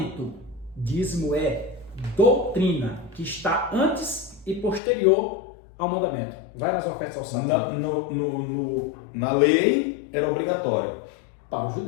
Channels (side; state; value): right; drops out; at 4.8 s